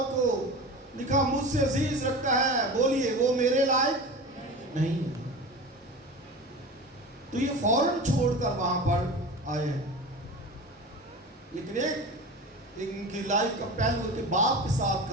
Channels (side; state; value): both; normal; correlation 0.31